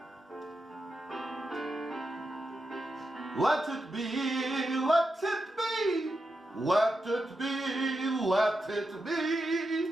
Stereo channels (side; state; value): both; normal; correlation 0.87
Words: Let it be, let it be, let it be, let it